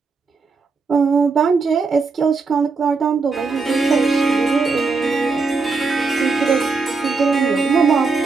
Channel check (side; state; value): left; quieter; 4.4 dB